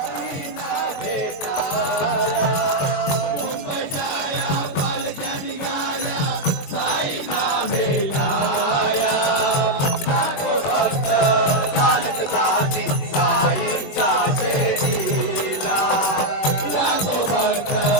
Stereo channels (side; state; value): right; late; 22 ms